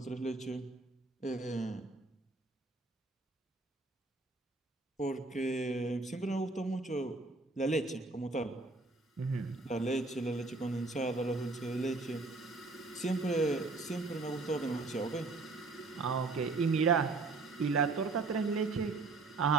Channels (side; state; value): left; quieter; 3.6 dB